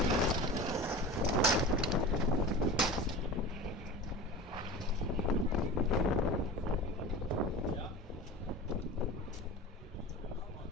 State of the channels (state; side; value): normal; both; correlation 0.33